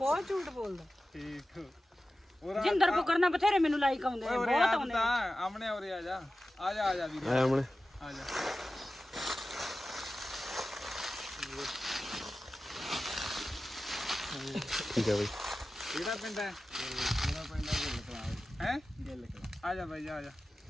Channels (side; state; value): both; normal; correlation 0.94